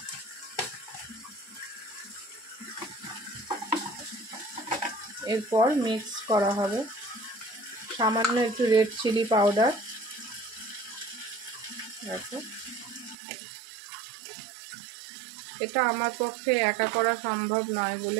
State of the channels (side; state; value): left; drops out; at 13.2 s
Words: এরপর মিক্স করা হবে সামান্য একটু রেড চিলি পাউডার। দেখো এটা আমার পক্ষে একা করা সম্ভব নয়